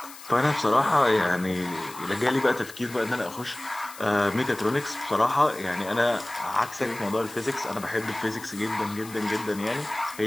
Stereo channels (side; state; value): left; noise; hiss, 17 dB below the sound